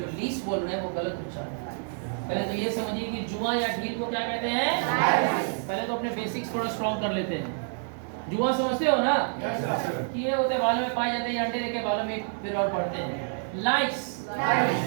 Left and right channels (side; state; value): left; silent; 59 dB below the other